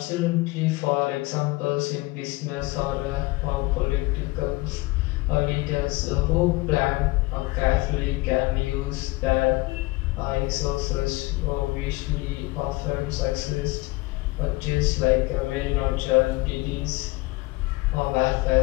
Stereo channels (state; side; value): quieter; right; 21.7 dB